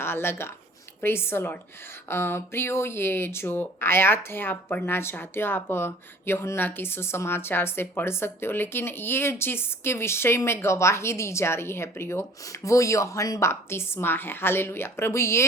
लगा। Praise the Lord. प्रियो, ये जो आयत है आप पढ़ना चाहते हो, आप यूहन्ना की सुसमाचार से पढ़ सकते हो, लेकिन ये जिसके विषय में गवाही दी जा रही है प्रियो, वो यूहन्ना बपतिस्मा है। हालेलुया। प्रभु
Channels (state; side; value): normal; both; correlation 0.50